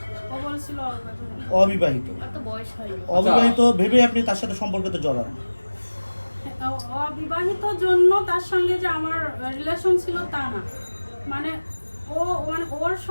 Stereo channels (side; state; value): both; inverted; correlation -1.00